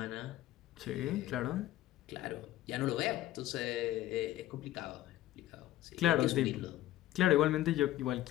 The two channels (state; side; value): quieter; right; 14.4 dB